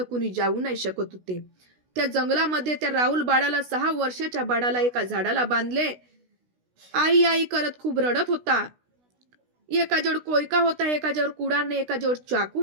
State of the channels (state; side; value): late; left; 16 ms